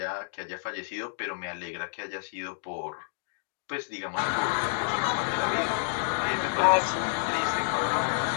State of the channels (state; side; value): silent; right; digital silence